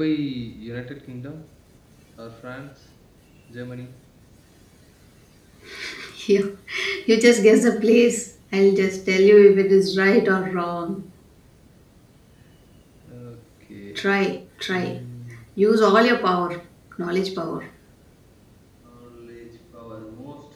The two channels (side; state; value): both; identical; correlation 1.00